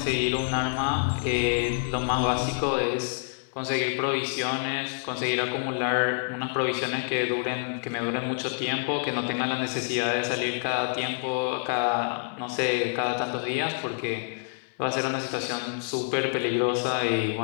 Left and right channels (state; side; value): silent; right; 60 dB below the other